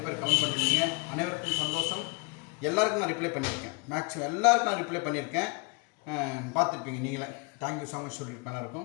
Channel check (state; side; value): quieter; right; 30.6 dB